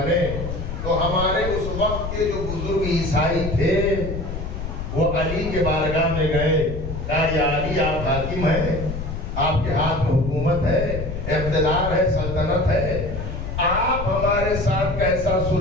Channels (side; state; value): left; noise; rumble, 6 dB below the sound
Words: تو ہمارے اس وقت کے جو بزرگ عیسائی تھے وہ علی کے بارگاہ میں گئے کہا یا علی آپ حاکم ہیں، آپ کے ہاتھ میں حکومت ہے، اقتدار ہے، سلطنت ہے، آپ ہمارے ساتھ کیسا